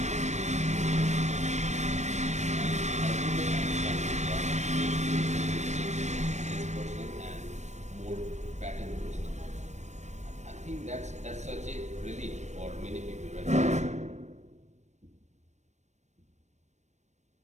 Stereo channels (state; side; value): late; left; 0.34 ms